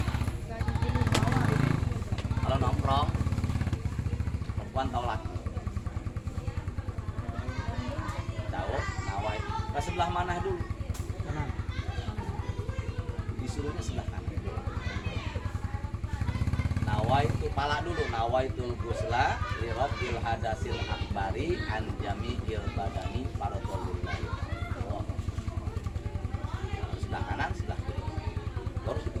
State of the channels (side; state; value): both; identical; correlation 1.00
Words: Kalau nongkrong, perempuan tahu laki. Tahu, nawai. Ke sebelah mana dulu? Kanan. Disuruhnya sebelah kanan. Nawai itu pala dulu. Nawaitul ghusla li rafil hadasil akbari an jami'il badani fardhon lillahi. Sebelah kanan, sebelah kiri. Baru